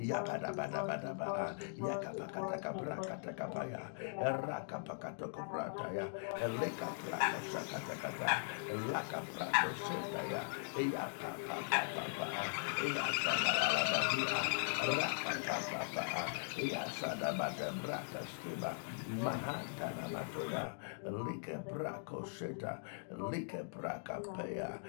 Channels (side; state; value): right; silent; digital silence